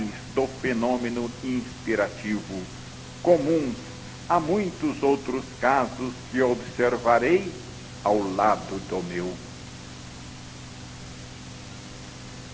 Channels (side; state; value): both; identical; correlation 1.00